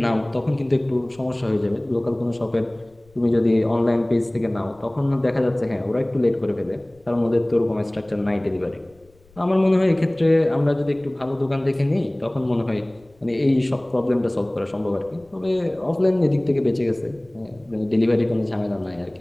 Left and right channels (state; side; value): noise; left; rumble, 30 dB below the sound